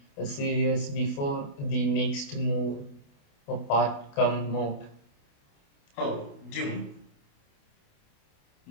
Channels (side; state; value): right; late; 28 ms